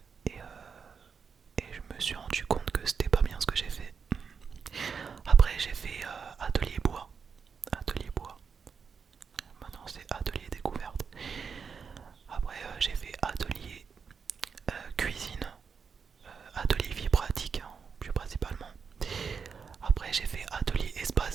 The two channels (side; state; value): left; quieter; 6.0 dB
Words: Et, et je me suis rendu compte que c'était pas bien ce que j'ai fait. Après j'ai fait atelier bois. Atelier bois. Maintenant c'est atelier découverte. Après j'ai fait atelier cuisine. Atelier vie pratique, hein, plus principalement. Après j'ai fait atelier